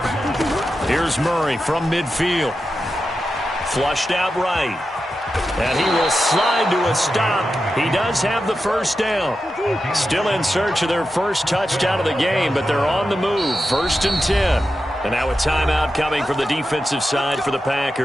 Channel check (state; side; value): normal; both; correlation 0.90